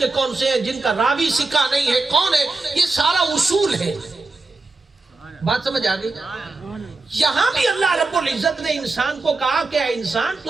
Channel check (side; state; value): left; quieter; 3.5 dB